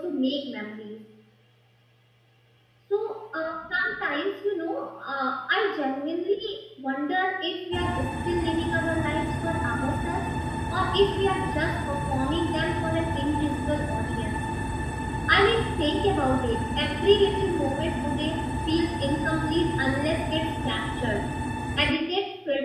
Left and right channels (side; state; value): both; identical; correlation 1.00